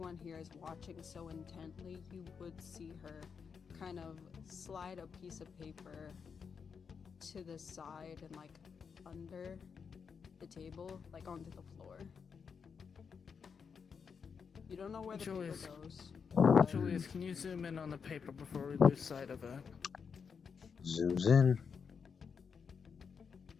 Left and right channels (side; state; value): right; quieter; 6.2 dB